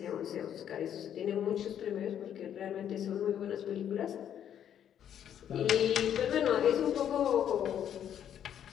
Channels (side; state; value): right; quieter; 9.7 dB